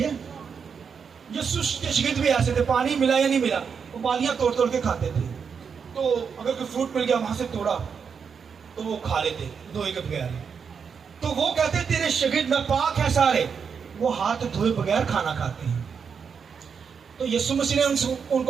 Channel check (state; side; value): quieter; left; 6.4 dB